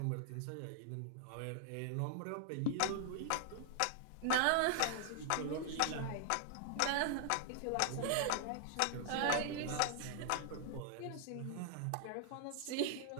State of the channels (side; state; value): both; different; correlation 0.00